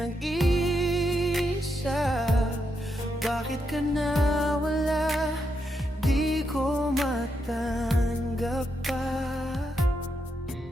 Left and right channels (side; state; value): both; normal; correlation 0.82